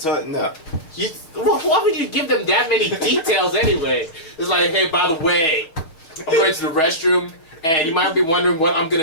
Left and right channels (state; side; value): late; right; 6.3 ms